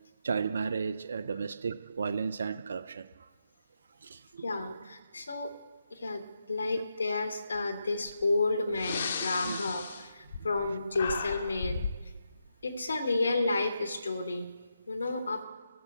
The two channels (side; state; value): both; inverted; correlation -0.83